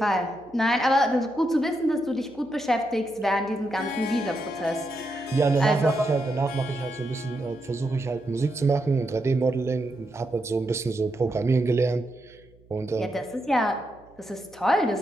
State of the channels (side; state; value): right; noise; hum, 28 dB below the sound